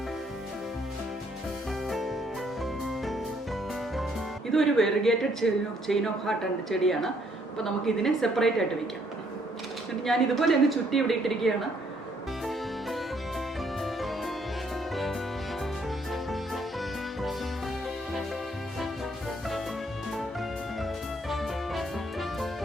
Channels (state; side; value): normal; both; correlation 0.68